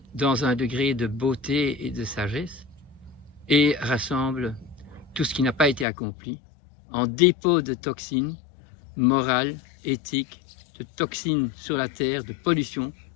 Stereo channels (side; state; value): right; drops out; at 5.9 s